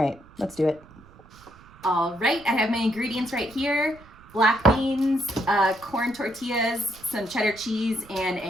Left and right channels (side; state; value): right; noise; rumble, 23 dB below the sound